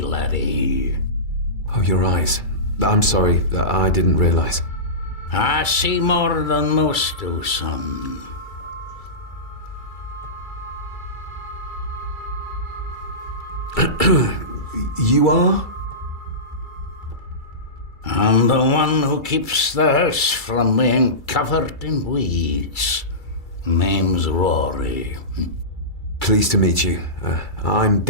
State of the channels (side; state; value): right; late; 2.3 ms